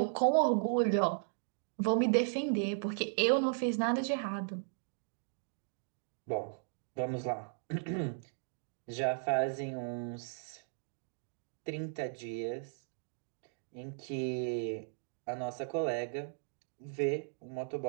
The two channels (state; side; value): silent; left; digital silence